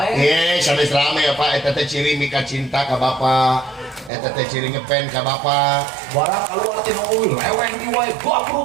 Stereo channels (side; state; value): left; drops out; at 4.1 s